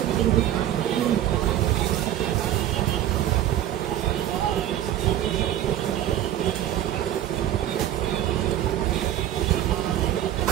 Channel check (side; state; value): left; quieter; 12.1 dB